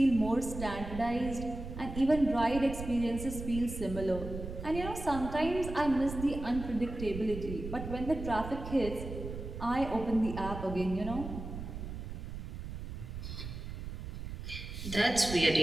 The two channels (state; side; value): noise; right; rumble, 8 dB below the sound